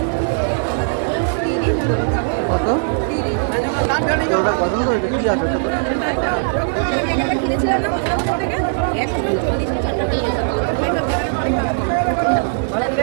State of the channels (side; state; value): left; silent; 63 dB below the other